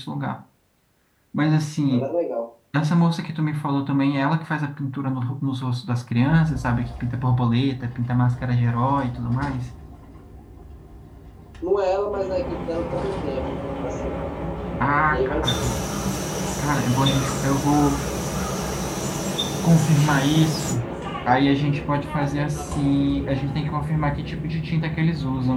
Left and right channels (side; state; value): both; identical; correlation 1.00